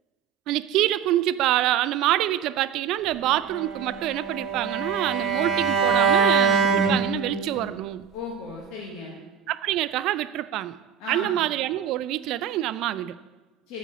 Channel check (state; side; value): quieter; left; 8.5 dB